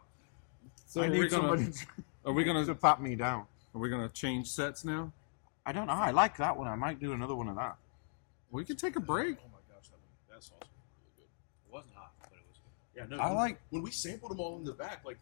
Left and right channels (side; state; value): right; silent; digital silence